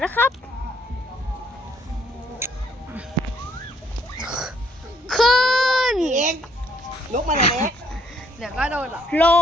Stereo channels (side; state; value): both; normal; correlation 0.66